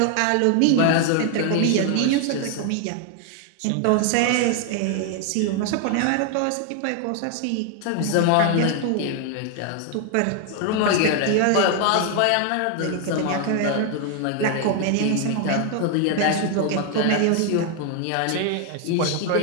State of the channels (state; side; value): different; both; correlation 0.00